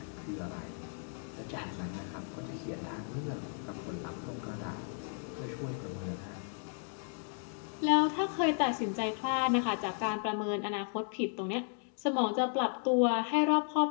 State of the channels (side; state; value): right; silent; 55 dB below the other